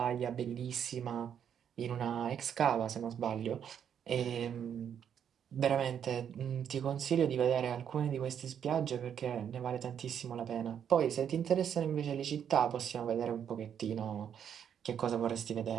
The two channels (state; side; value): quieter; left; 8.6 dB